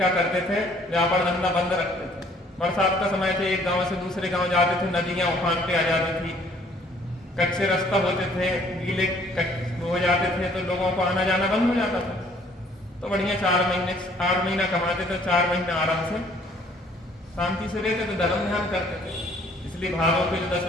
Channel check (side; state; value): both; normal; correlation 0.60